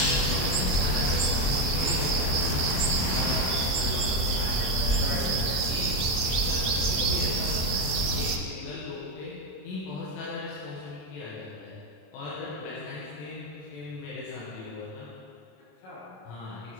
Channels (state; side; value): late; right; 26 ms